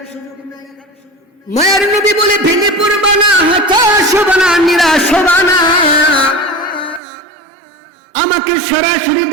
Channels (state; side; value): drops out; left; at 7.0 s